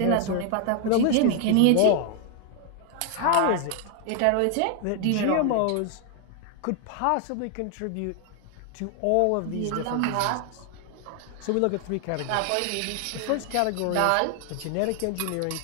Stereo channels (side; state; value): both; different; correlation 0.00